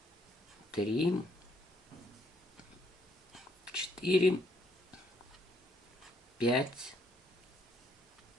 3, 4, 5,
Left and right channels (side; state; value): both; normal; correlation 0.70